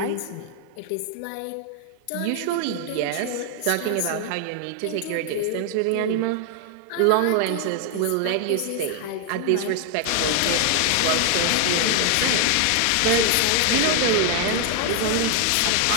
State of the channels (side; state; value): both; different; correlation 0.00